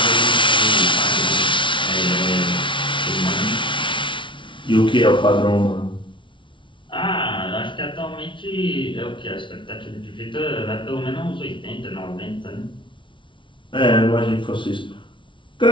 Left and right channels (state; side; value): late; right; 0.24 ms